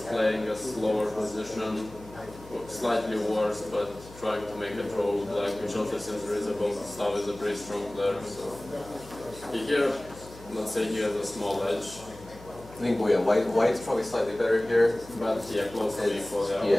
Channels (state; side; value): noise; left; hum, 19 dB below the sound